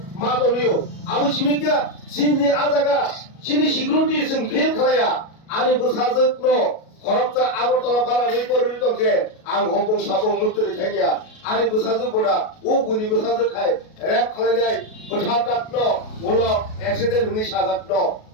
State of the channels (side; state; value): right; late; 37 ms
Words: मादलियो आबु सिमिगा सिनि आजागा सिनि सिक्युरिटि जों फेल खालाया आनि बसाजोनो खरबजा आगरतला पारा रिपररि दंके आं हबं साबं मुतरि थागिया आनि बसाजो बोदा ओ गुनि बसाजो खाय रेप खालायनाय बोथादातनो उलो एक्सिडेन्ट हुनि साजातनो